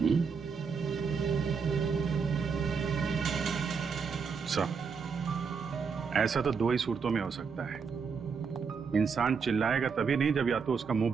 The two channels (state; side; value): quieter; left; 5.7 dB